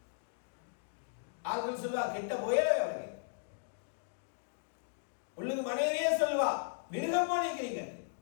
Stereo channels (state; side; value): silent; right; digital silence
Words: ஆட்கள் சொல்லுவா, கிட்ட போயவே அவருக்கு உள்ளுக்கு மனைவியே சொல்லுவா, மிருகமா நிக்கிறீங்க.